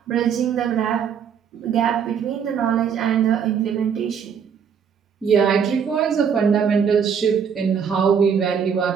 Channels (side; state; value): left; quieter; 7.3 dB